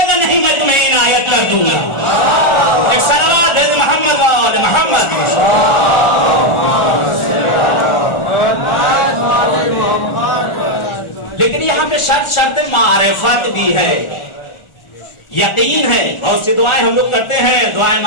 گا نہیں میں تمہیں عنایت کر دوں گا۔ ایک صلوات ہے محمد والے محمد۔ لیکن یہاں پہ شرط معرفت بھی ہے، یقین ہے۔ بہت سی دعائیں ہم لوگ کرتے ہیں، دعائیں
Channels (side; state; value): right; late; 1.4 ms